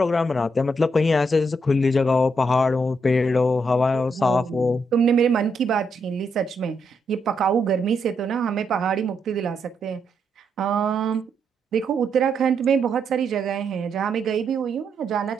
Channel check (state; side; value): normal; both; correlation 0.79